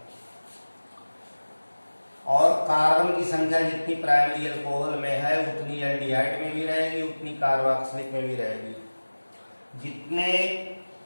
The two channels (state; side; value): inverted; both; correlation -1.00